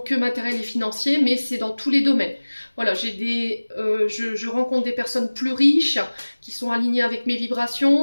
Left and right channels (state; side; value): inverted; both; correlation -1.00